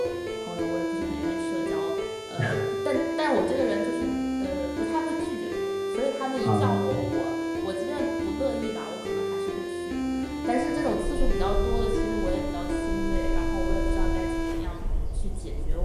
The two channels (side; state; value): both; identical; correlation 1.00